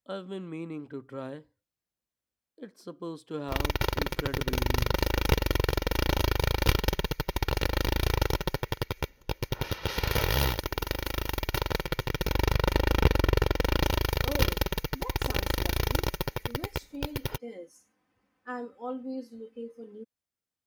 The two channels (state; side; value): identical; both; correlation 1.00